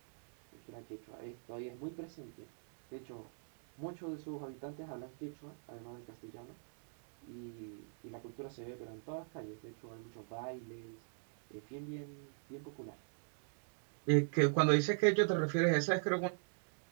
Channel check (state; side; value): silent; left; digital silence